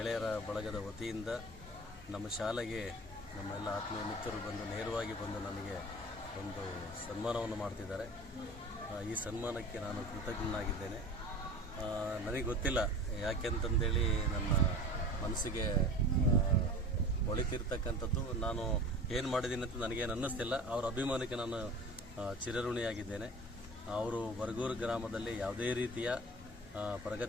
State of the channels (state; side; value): normal; both; correlation 0.38